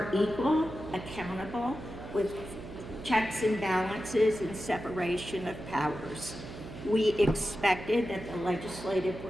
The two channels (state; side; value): noise; right; hum, 12 dB below the sound